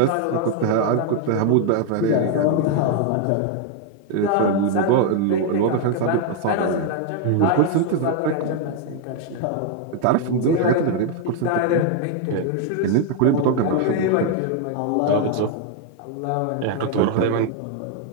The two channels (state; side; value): different; both; correlation 0.00